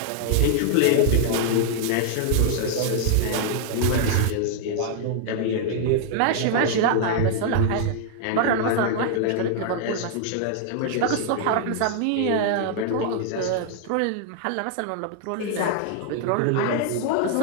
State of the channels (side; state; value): both; different; correlation 0.00